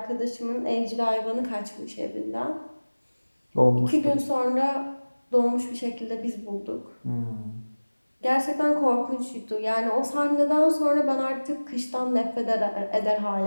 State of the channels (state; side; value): inverted; both; correlation -1.00